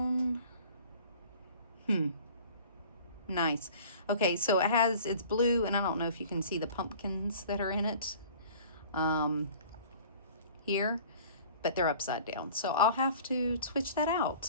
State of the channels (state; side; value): inverted; both; correlation -0.47